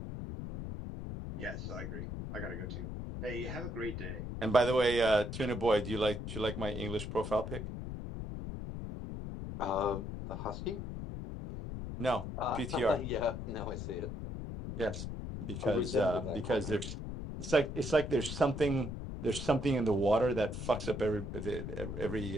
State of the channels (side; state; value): left; noise; rumble, 6 dB below the sound